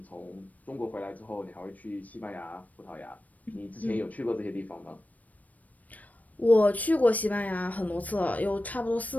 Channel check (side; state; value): right; late; 0.073 ms